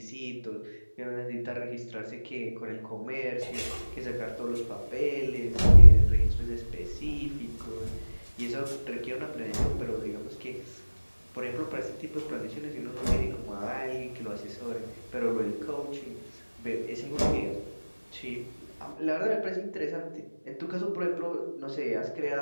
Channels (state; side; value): inverted; both; correlation -1.00